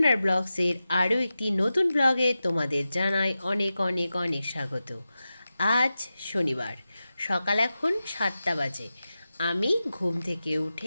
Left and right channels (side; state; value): both; inverted; correlation -0.93